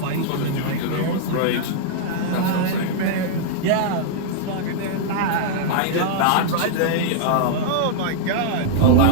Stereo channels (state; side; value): different; both; correlation -0.01